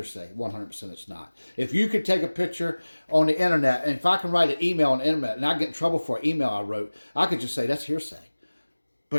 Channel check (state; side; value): inverted; both; correlation -1.00